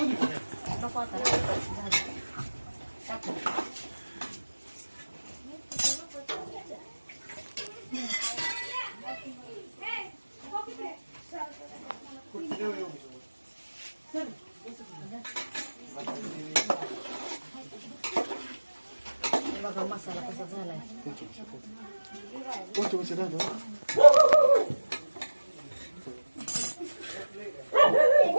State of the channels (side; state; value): both; inverted; correlation -1.00